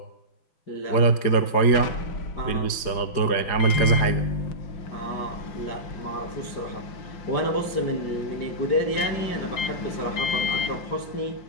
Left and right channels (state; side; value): late; right; 4.9 ms